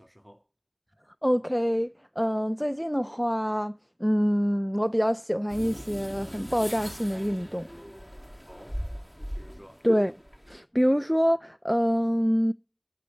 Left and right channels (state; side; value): identical; both; correlation 1.00